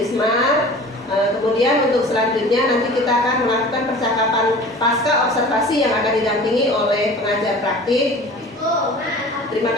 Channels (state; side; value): normal; both; correlation 0.42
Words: Kemudian untuk selanjutnya nanti kita akan melakukan percakapan pasca observasi yang akan didampingi oleh pengajar praktik. Terima